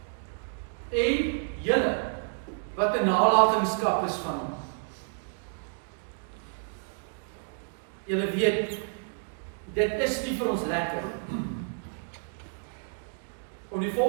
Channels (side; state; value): left; silent; digital silence